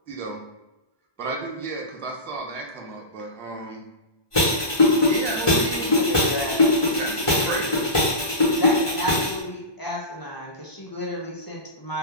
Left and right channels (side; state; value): right; late; 1.2 ms